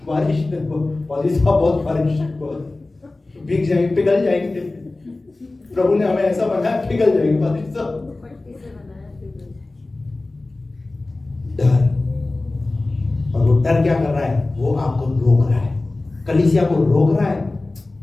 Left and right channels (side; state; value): right; quieter; 3.1 dB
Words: बारिश बहुत बारिश, भीग जाएंगे, पिघल जाएंगे। प्रभु ने हमें ऐसा बनाया, पिघल जाएंगे बारिश से। डर। और वो डर क्या कर रहा है? वो आपको रोक रहा है, कलीसिया को रोक रहा है।